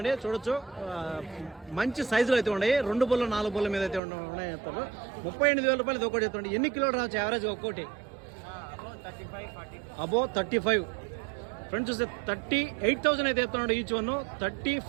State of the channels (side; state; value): left; drops out; at 4.0 s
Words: చూడొచ్చు మంచి సైజులో అయితే ఉన్నాయి. 2 బళ్ళు 4 బళ్ళ మీద అయితే ఉన్నాయి చెప్తారు. 38,000 రూపాయలు ఇది ఒకటి చెప్తాండి. ఎన్ని కిలోలు రావచ్చు యావరేజ్ ఒక్కోటి? అబో 35. ఫ్రెండ్స్ చూస్తే 38,000 అయితే చెప్తున్నాడు ఈచ్ 1.